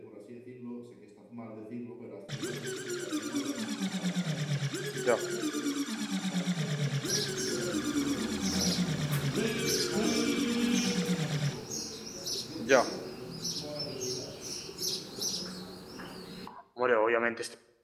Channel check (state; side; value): identical; both; correlation 1.00